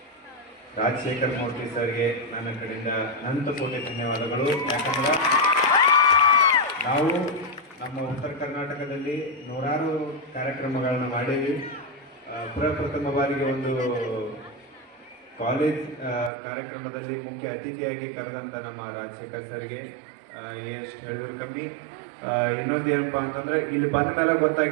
ರಾಜಶೇಖರ್ ಮೂರ್ತಿ ಸರ್ಗೆ ನನ್ನ ಕಡೆಯಿಂದ ಅನಂತ ಕೋಟಿ ಧನ್ಯವಾದಗಳು. ಯಾಕಂದ್ರೆ ನಾವು ನಮ್ಮ ಉತ್ತರ ಕರ್ನಾಟಕದಲ್ಲಿ ನೂರಾರು ಕಾರ್ಯಕ್ರಮಗಳನ್ನ ಮಾಡೀವಿ. ಪ್ರಪ್ರಥಮ ಬಾರಿಗೆ ಒಂದು ಕಾಲೇಜ್ ಕಾರ್ಯಕ್ರಮದಲ್ಲಿ ಮುಖ್ಯ ಅತಿಥಿಯಾಗಿ ಕರೆದಂಥ ನಮ್ಮ ರಾಜಶೇಖರ್ ಸರ್ಗೆ ಎಷ್ಟು ಹೇಳಿದ್ರು ಕಮ್ಮಿ. ಇನ್ನೊಂದು ಏನಪ್ಪ ಅಂತಂದ್ರೆ, ಇಲ್ಲಿ ಬಂದ ಮೇಲೆ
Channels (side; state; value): left; drops out; at 16.3 s